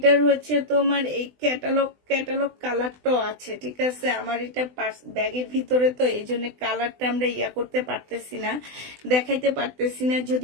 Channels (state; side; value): late; left; 20 ms